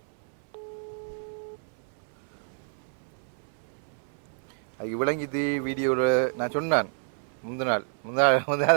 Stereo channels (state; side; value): silent; left; 59 dB below the other